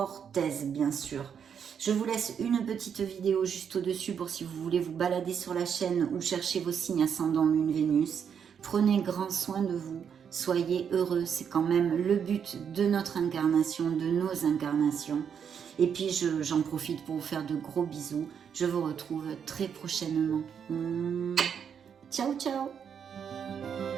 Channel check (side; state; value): left; quieter; 7.6 dB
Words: aise, bien sûr. Je vous laisse une petite vidéo juste au-dessus pour si vous voulez vous balader sur la chaîne ou chercher vos signes ascendant Lune Vénus. Prenez grand soin de vous, soyez heureux, c'est quand même le but de notre incarnation, de nos incarnations. Et puis j'en profite pour vous faire de gros bisous. Je vous retrouve très prochainement. Ciao, ciao!